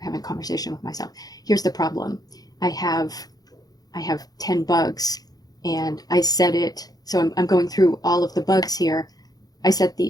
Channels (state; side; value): late; right; 0.19 ms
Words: a conversation with myself. Here's the problem. I have 10 bugs and I set it, so I'm going through all of the bugs here. I set